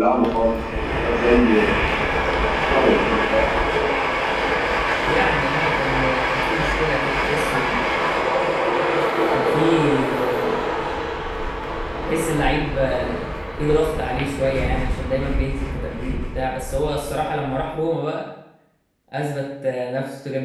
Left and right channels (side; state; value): both; identical; correlation 1.00